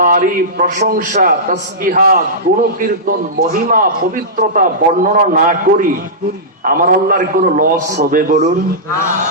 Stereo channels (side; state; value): both; normal; correlation -0.15